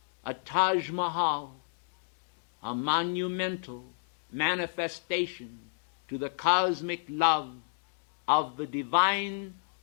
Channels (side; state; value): right; silent; digital silence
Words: a Taj Mahal, a monumental manifestation to the cosmic love of the divine